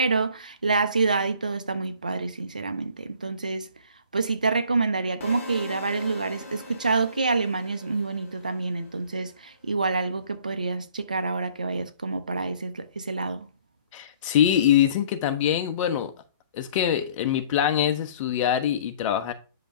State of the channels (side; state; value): both; inverted; correlation -0.54